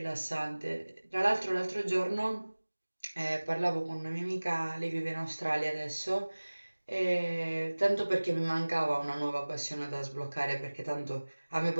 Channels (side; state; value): both; inverted; correlation -1.00